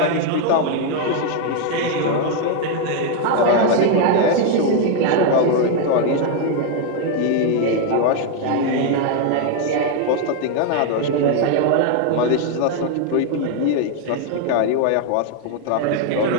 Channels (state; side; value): different; both; correlation 0.01